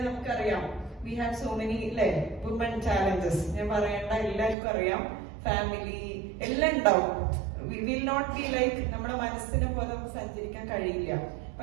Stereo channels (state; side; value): drops out; left; at 4.5 s